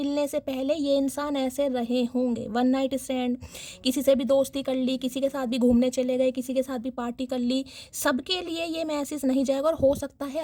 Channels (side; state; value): both; identical; correlation 1.00